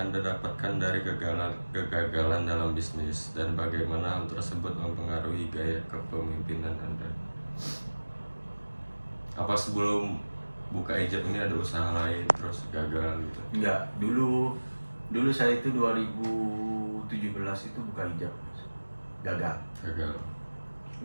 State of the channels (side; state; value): both; inverted; correlation -1.00